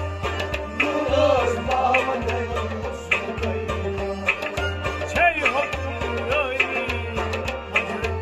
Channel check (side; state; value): both; identical; correlation 1.00